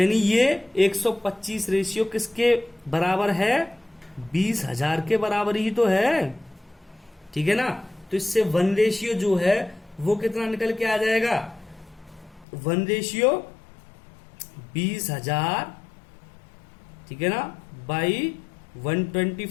ये 125 रेशियो किसके बराबर है, 20,000 के बराबर ही तो है। ठीक है ना। तो इससे 1 रेशियो जो है वो कितना निकल के आ जाएगा, 1 रेशियो 20,000, ठीक है ना, बाई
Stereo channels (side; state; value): right; drops out; at 12.5 s